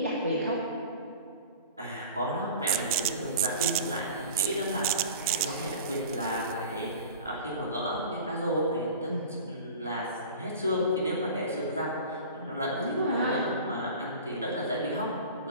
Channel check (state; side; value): inverted; both; correlation -0.38